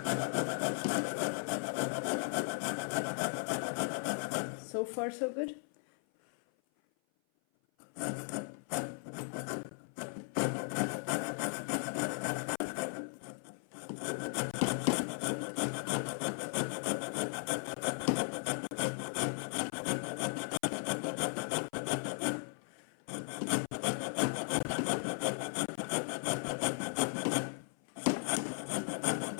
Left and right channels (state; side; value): silent; right; 53 dB below the other